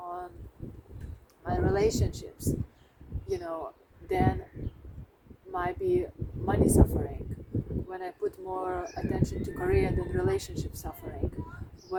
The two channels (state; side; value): identical; both; correlation 1.00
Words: my relationships, then might be money suffering. When I put more attention to career, then relationship suffering.